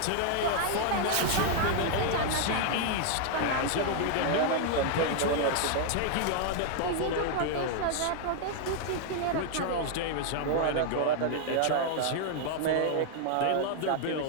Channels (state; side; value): different; both; correlation 0.00